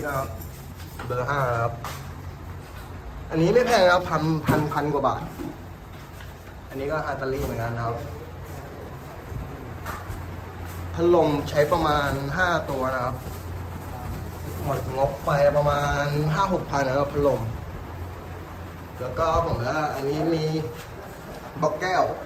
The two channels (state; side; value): identical; both; correlation 1.00